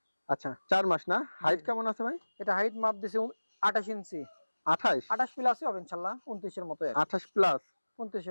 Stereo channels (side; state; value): both; inverted; correlation -1.00